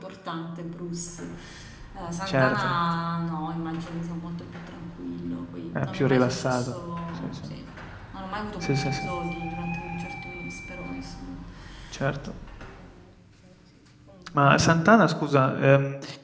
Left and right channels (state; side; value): identical; both; correlation 1.00